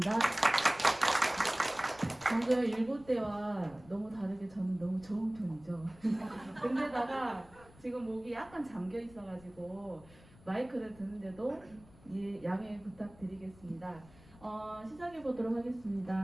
방금 일곱 때와 너무 다르게 저는 너무 좋은 편이죠. 근데다가 지금 목이 약간 잠겨 있어가지고 마이크를 드는데도 양해 부탁드리겠습니다. 시작해 보도록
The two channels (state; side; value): noise; left; rumble, 23 dB below the sound